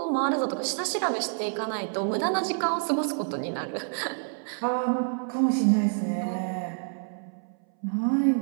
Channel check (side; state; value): left; silent; 60 dB below the other